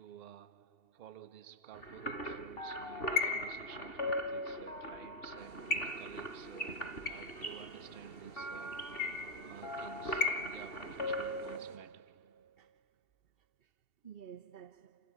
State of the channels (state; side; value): late; right; 2.7 ms